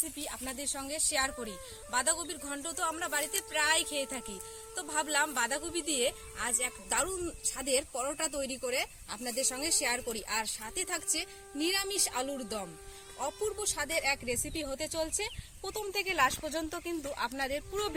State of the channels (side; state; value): both; identical; correlation 1.00